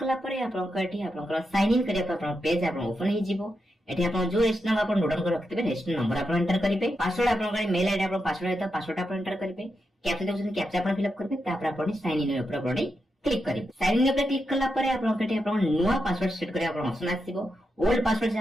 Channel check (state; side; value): normal; both; correlation 0.86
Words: कला पर आपण कटी आपण साइन इन करिया आपण पेज आपण ओपन हे जिवो एठी आपण जो रजिस्टर नंबर आपण नोट डाउन कर रखतबे रजिस्टर नंबर आपण एंटर करिवे पासवर्ड आपण मेल आईडी आपण पासवर्ड हेता पासवर्ड आपण एंटर करिवे कैप्चा देउछन कैप्चा आपण फिल अप करबे तापर आपण साइन इन ऊपर आपण क्लिक करिवे साइन इन ऊपर क्लिक कला पर आपण कटी आपण नुवा पासवर्ड सेट करिया आपण ऑप्शन आसीबो ओल्ड पासवर्ड जे